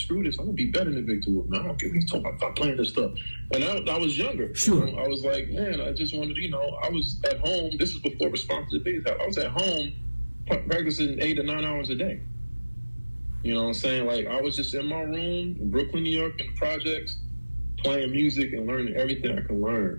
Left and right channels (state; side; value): inverted; both; correlation -1.00